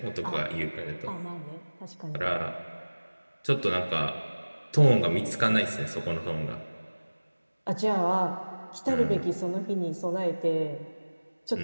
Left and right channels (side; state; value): both; inverted; correlation -1.00